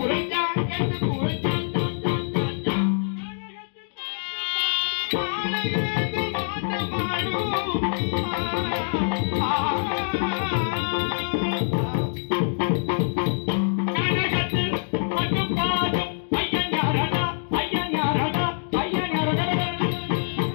எந்த குறைஞ்சா கனகத்தில் மட்டும் பாடும் ஐயன் யாரடா ஐயன் யாரடா ஐயன் யாரடா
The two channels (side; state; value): right; silent; digital silence